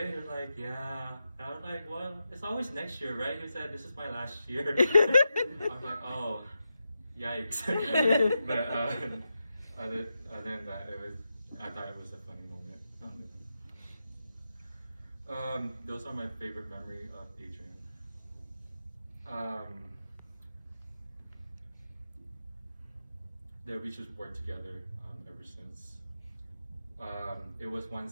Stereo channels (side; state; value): both; inverted; correlation -0.88